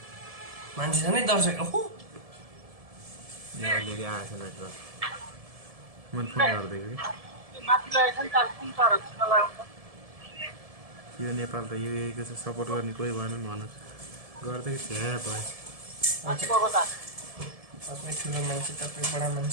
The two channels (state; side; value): late; left; 1.7 ms